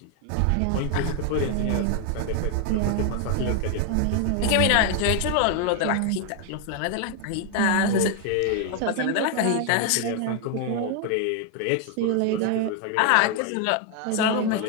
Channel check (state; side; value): different; both; correlation 0.01